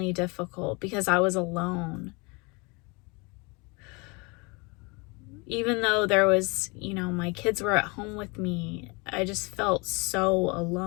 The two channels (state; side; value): quieter; right; 28.8 dB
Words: difficult because I was alone. Even though there was, you know, my kids were at home with me, I just felt so